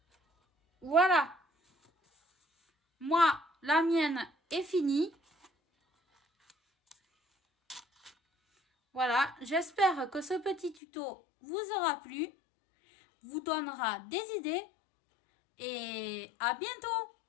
Voilà. Moi, la mienne est finie. Voilà, j'espère que ce petit tuto vous aura plu, vous donnera des idées et à bientôt!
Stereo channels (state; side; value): drops out; right; at 10.8 s